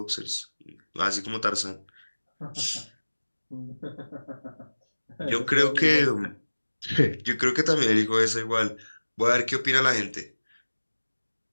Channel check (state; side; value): inverted; both; correlation -1.00